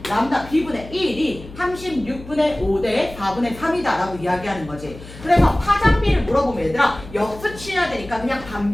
람다 B분의 1이 36분의 5 대 4분의 3이다 라고 이야기하는 거지. 그래서 파장 B를 물어보면 얘들아 역수 취해야 되니까 그냥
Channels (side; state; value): left; noise; hum, 16 dB below the sound